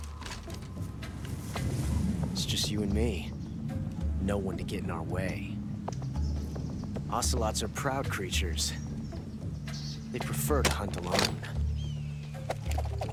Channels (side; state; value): both; identical; correlation 1.00